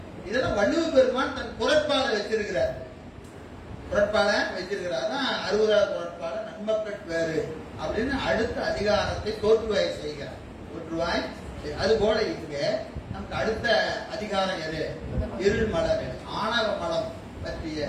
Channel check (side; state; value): both; identical; correlation 1.00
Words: இதெல்லாம் வள்ளுவ பெருமான் தன் குறட்பால வச்சிருக்கிறார். 60வது குறட்பால நன்மக்கள் பேரு அப்படின்னு அடுத்த அதிகாரத்தை தோற்றுவாய் செய்கிறார். அது போல இங்க நமக்கு அடுத்த அதிகாரம் எது? இருள் மலம், ஆணவ மலம் பற்றிய